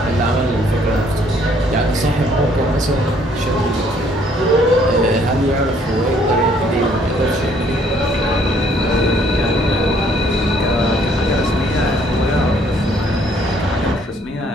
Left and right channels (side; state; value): both; normal; correlation 0.63